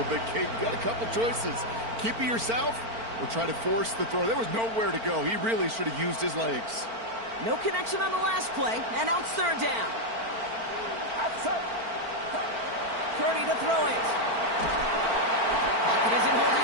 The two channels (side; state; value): left; late; 4.4 ms